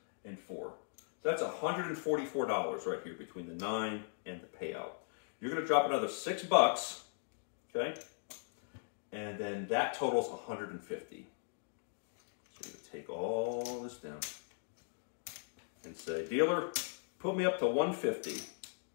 and 4. So that's $144 right here between the 9 and the payout. You're going to drop another $6, okay? And then that totals $150. So you're going to take all this down and say, "Dealer, put me up to $150.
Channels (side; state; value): right; silent; digital silence